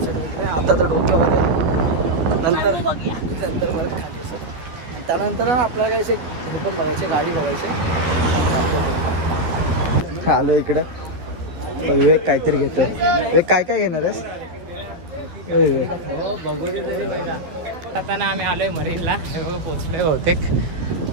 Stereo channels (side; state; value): left; late; 12 ms